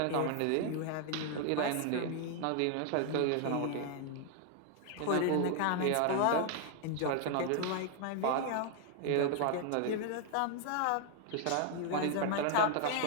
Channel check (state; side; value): different; both; correlation 0.00